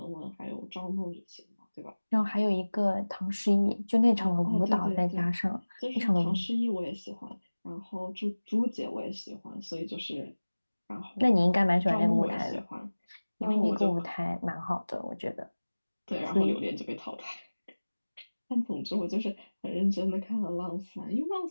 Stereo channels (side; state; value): both; inverted; correlation -1.00